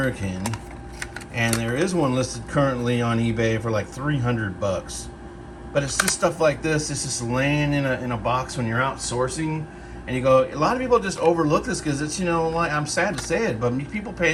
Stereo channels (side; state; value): both; identical; correlation 1.00